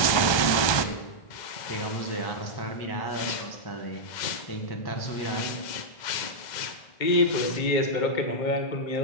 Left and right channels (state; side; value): late; right; 1.2 ms